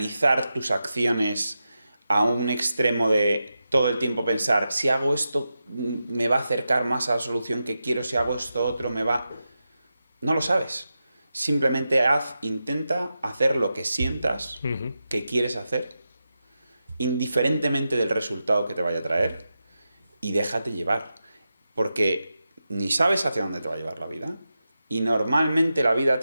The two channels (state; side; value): inverted; both; correlation -0.90